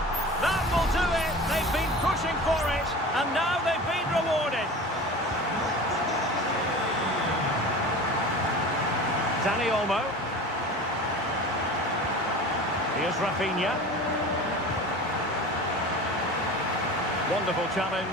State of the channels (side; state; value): both; normal; correlation 0.36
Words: That will do it. They've been pushing for it, and now they've been rewarded. Dani Olmo. Here's Rafinha. Wonderful